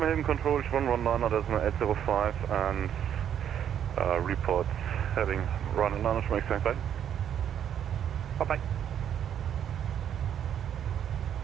control 119.805 and report heading run and launch from exact side. Bye bye.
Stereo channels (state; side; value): quieter; left; 9.4 dB